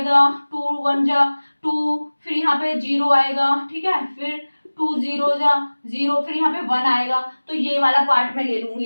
2 1 जा 2, फिर यहाँ पे 0 आएगा। ठीक है, फिर 2 0 जा 0, फिर यहाँ पे 1 आएगा, तो ये वाला पार्ट मैं ले लूंगी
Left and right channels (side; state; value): both; inverted; correlation -1.00